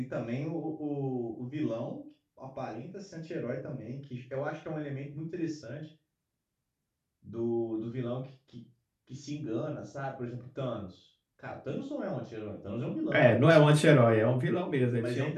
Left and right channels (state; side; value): identical; both; correlation 1.00